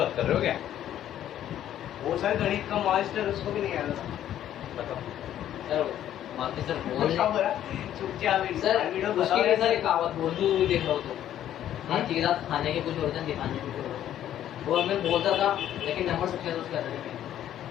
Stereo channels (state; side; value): quieter; right; 11.4 dB